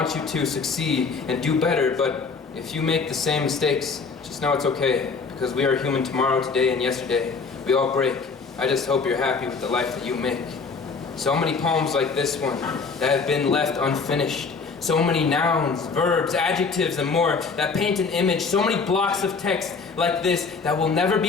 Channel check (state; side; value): quieter; right; 4.8 dB